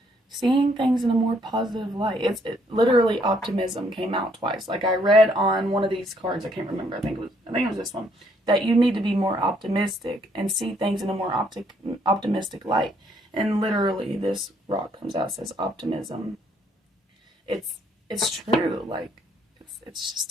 seeing things in a more positive light. It literally, optimism came out twice. Like, I read on one of these cards, I can't remember, I think it was this one, that you need to be more optimistic and see things in a more optimistic light. And literally, this rock comes out, says optimism. It's true. Like, it's just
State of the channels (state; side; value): normal; both; correlation 0.68